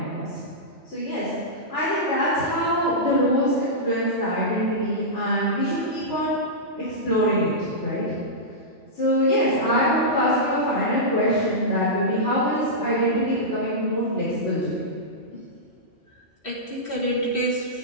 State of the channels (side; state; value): both; normal; correlation -0.13